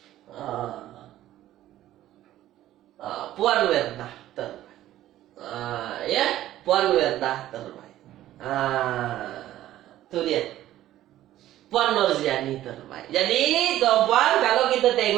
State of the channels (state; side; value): quieter; left; 13.7 dB